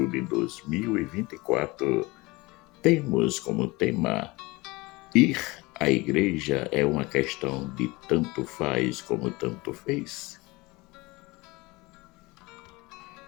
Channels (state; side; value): quieter; right; 22.9 dB